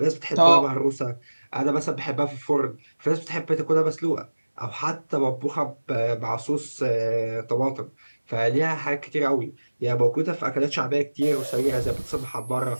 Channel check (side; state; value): both; inverted; correlation -1.00